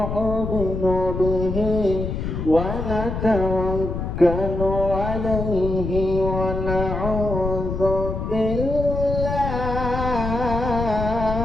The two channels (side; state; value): left; noise; rumble, 4 dB below the sound